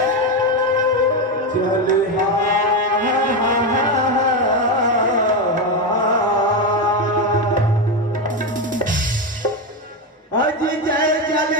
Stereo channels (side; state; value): both; normal; correlation 0.12